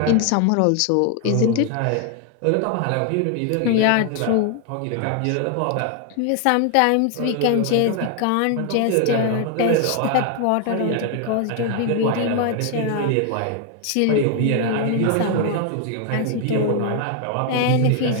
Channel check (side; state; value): both; different; correlation 0.00